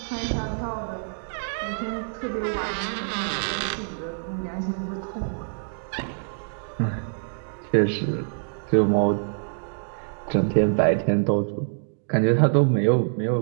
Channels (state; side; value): silent; left; digital silence